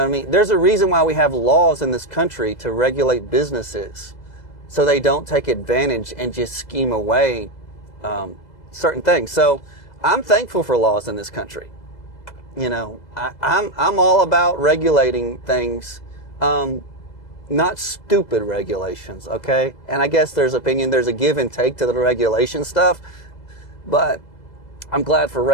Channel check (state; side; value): late; right; 2.0 ms